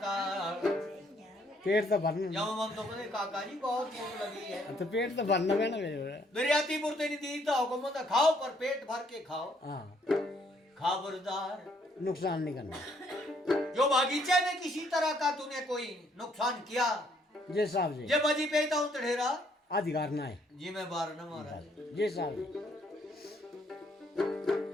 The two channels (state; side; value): normal; both; correlation 0.68